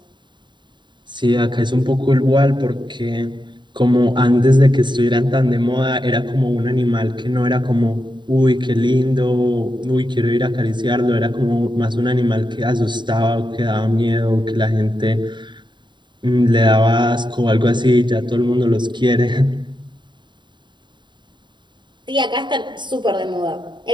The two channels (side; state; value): left; late; 0.22 ms